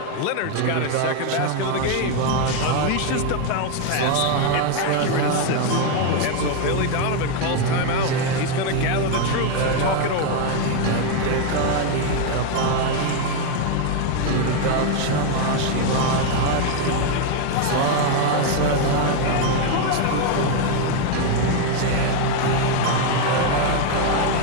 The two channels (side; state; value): both; different; correlation 0.01